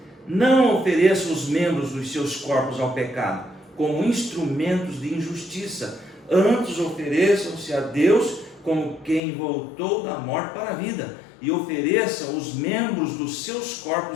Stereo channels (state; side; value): drops out; right; at 9.2 s